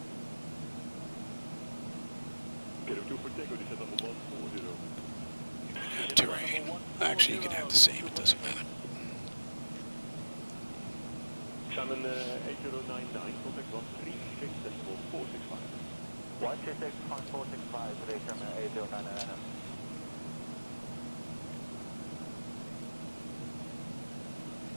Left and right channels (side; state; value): both; inverted; correlation -1.00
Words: Get a 2 for Tango, descent level 140. Terrain. Actually, you can have the same, it doesn't matter. Simon 8099, contact 136.465. 136.465, today Simon 8099.